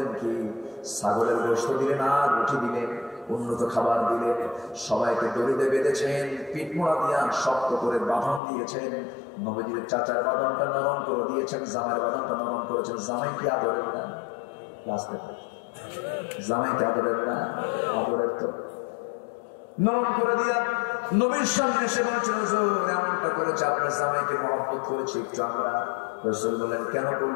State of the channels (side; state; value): right; drops out; at 8.4 s